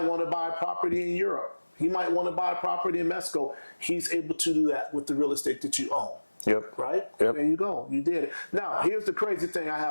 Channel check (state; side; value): inverted; both; correlation -1.00